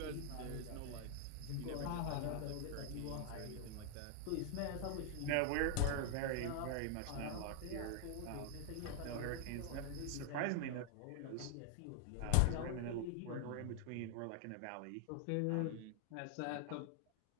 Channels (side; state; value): both; different; correlation 0.00